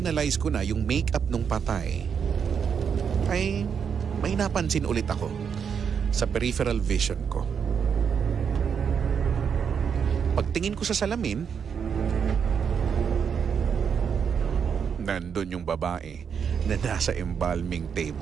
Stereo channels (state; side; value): quieter; left; 7.0 dB